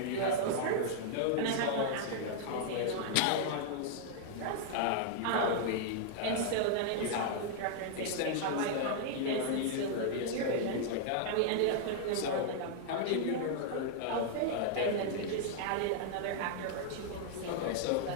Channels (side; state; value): both; different; correlation -0.01